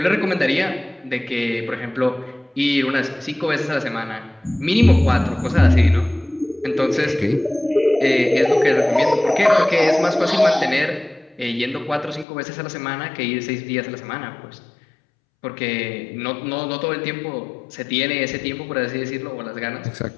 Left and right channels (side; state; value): right; drops out; at 12.2 s